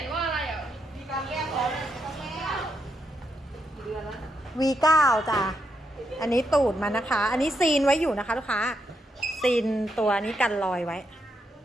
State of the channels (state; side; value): normal; both; correlation 0.81